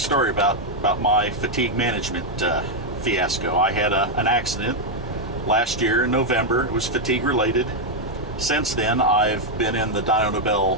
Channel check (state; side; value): normal; both; correlation 0.00